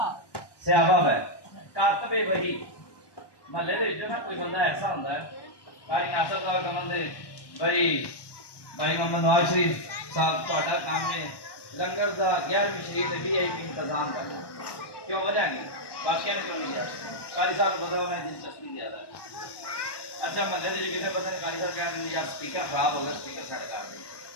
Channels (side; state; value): right; late; 1.1 ms